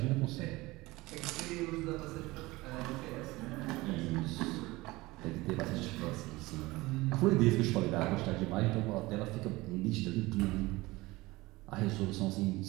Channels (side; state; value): left; quieter; 20.7 dB